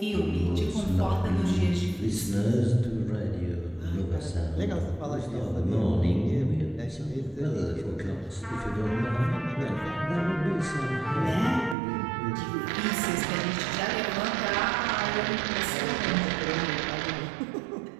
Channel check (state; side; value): drops out; left; at 11.8 s